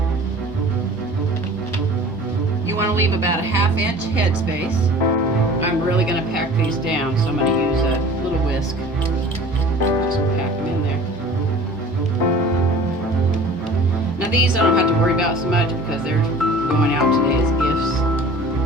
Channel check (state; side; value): normal; both; correlation 0.44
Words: You want to leave about a 1/2 inch headspace. I'm really going to pack these down, so I'm going to use a little whisk. Just pack them in there. Now these I don't have to worry about so much because they're going out today as gifts.